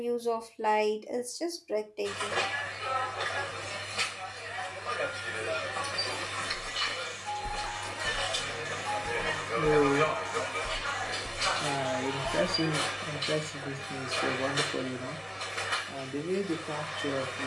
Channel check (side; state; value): both; identical; correlation 1.00